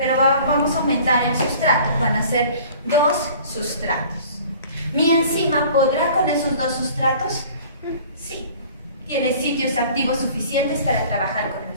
vamos a aumentar el sustrato. Van a ser 2 sustratos. ¿Mi enzima podrá con esos 2 sustratos? Sí. Tiene sitios activos suficientes para trabajar con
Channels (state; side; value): inverted; both; correlation -0.48